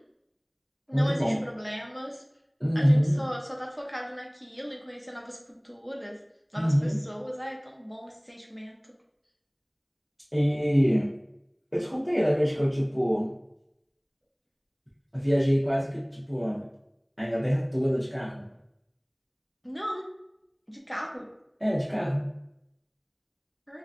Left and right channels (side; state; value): both; identical; correlation 1.00